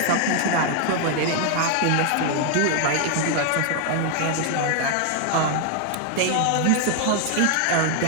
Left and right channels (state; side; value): different; both; correlation 0.00